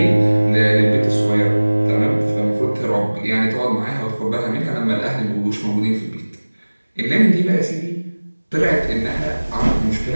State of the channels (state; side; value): inverted; both; correlation -1.00